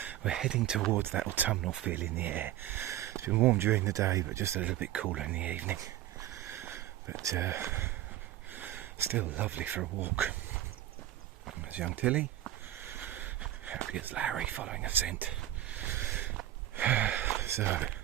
we're heading towards that autumnal feel in the air. It's been warm during the day but just a little bit cooler in the evening. But still lovely for a walk. There's young Tilly, happy as Larry following a scent. So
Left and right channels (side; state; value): left; quieter; 13.2 dB